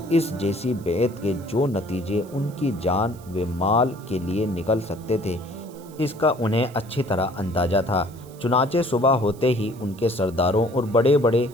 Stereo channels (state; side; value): noise; right; hiss, 24 dB below the sound